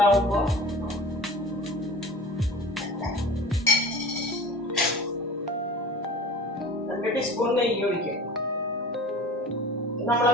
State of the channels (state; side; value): normal; both; correlation 0.38